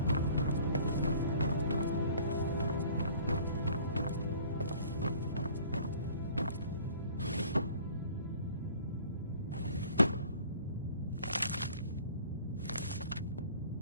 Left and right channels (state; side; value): inverted; both; correlation -0.50